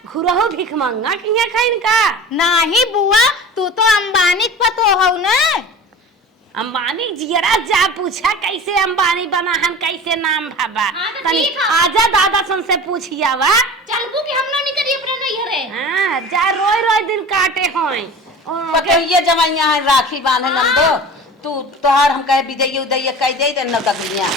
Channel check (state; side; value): normal; both; correlation 0.36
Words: घुरहो भिख मंगा की खाइन का नाही बुआ तू तो अंबानी पतो हो ना। अंबानी जियरा जा पूछा कैसे अंबानी बना हम कैसे नाम भाबा हाँ, तो तनी ठीक है। आजा दादा सन से पूछिया वा। चलबू कि हम ना निकली अपने नैहरे। हां जा रोई दिन काटे होय पतैया जमाइया है राखी बांधे नंदो तू तोहार हम कहे विजय उदय कह दे दे नौकरियां।